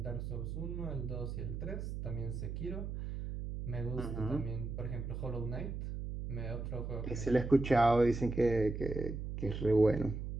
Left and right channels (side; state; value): right; noise; hum, 5 dB below the sound